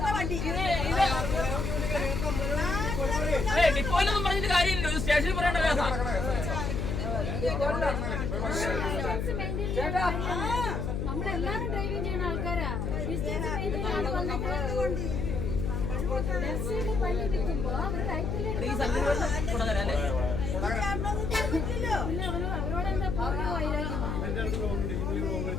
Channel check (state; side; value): noise; left; hum, 1 dB below the sound